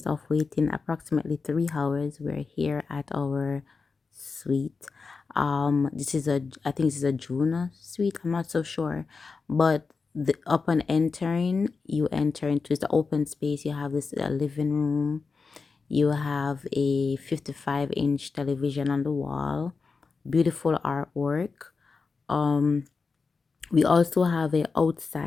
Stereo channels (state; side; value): quieter; right; 4.7 dB